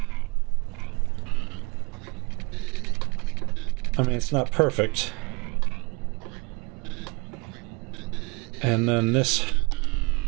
I mean, it's not perfect. And then this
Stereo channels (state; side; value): quieter; left; 28.4 dB